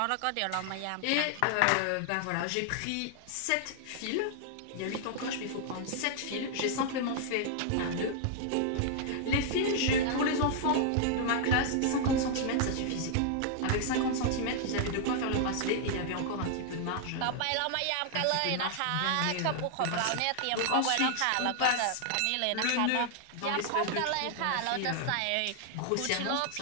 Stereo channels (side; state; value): both; different; correlation 0.00